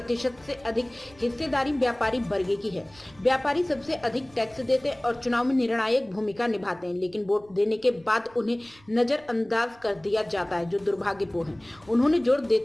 से अधिक हिस्सेदारी व्यापारी वर्ग की है। व्यापारी सबसे अधिक टैक्स देते हैं और चुनाव में निर्णायक भूमिका निभाते हैं, लेकिन वोट देने के बाद उन्हें नजरअंदाज कर दिया जाता है, जो दुर्भाग्यपूर्ण है। उन्होंने जोर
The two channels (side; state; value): right; noise; rumble, 27 dB below the sound